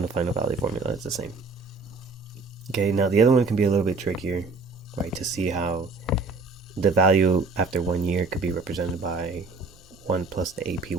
final value formula. It's the same. Okay, now the other one can be a little bit trickier, right? To see how the value after 1 year could be represented by 1 plus the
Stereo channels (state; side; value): quieter; left; 3.9 dB